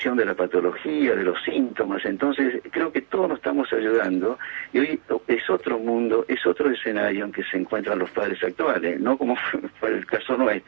de la patología, de los síntomas. Entonces creo que todos nos estamos ayudando, y hoy es otro mundo, es otro escenario en que se encuentran los padres actuales, no como fue el caso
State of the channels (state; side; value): silent; left; 63 dB below the other